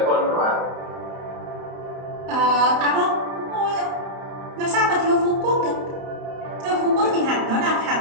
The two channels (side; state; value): left; late; 31 ms